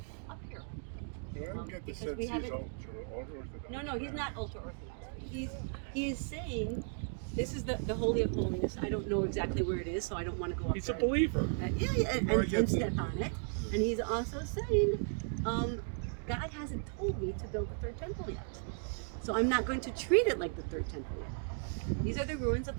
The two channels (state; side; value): silent; left; 54 dB below the other